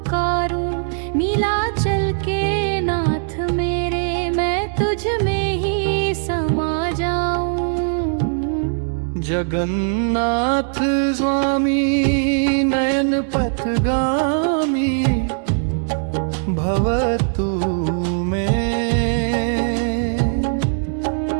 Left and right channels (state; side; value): silent; left; digital silence